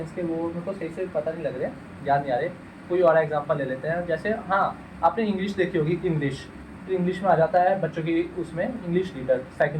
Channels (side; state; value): both; identical; correlation 1.00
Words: के वो मेरे को सही से पता नहीं लग रहे, याद नहीं आ रहे। कोई और एग्जांपल ले लेते हैं, जैसे हाँ आपने इंग्लिश देखी होगी, इंग्लिश, तो इंग्लिश में आ जाता है बच्चों की, उसमें इंग्लिश रीडर